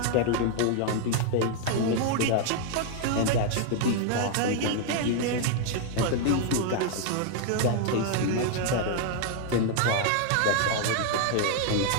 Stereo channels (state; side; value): different; both; correlation 0.00